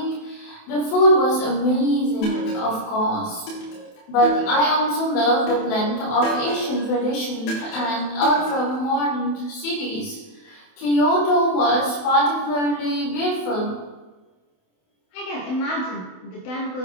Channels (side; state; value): right; late; 27 ms